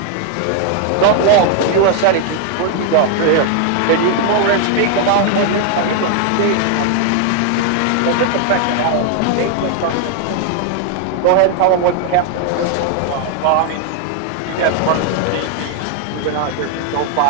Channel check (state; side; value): different; both; correlation 0.00